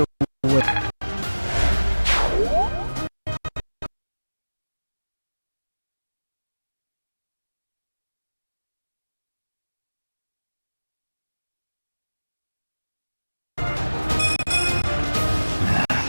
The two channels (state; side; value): inverted; both; correlation -1.00